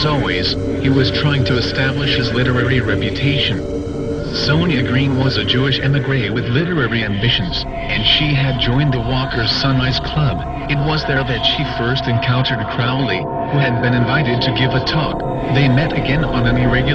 always, he was trying to establish his literary reputation. Sonia Green was a Jewish émigré with literary ambitions, and she had joined the Walker's Sunrise Club. It was there that she first encountered Crowley, who had been invited to give a talk. They met again on an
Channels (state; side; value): identical; both; correlation 1.00